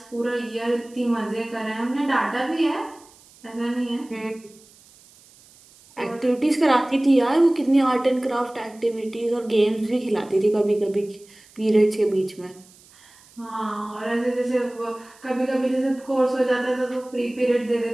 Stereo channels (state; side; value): noise; right; hiss, 26 dB below the sound